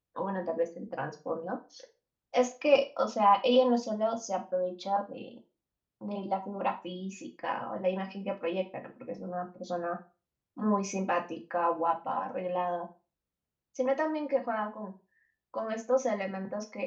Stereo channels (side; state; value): both; identical; correlation 1.00